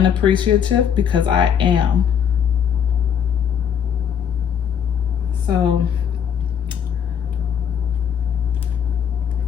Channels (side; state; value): right; quieter; 8.2 dB